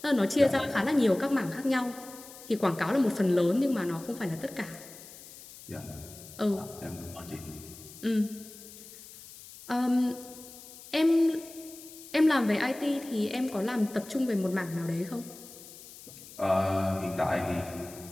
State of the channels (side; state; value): left; noise; hiss, 17 dB below the sound